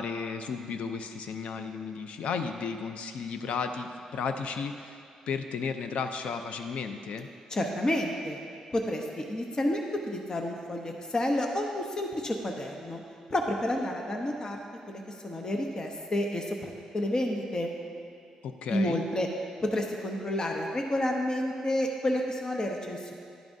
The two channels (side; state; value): both; normal; correlation 0.81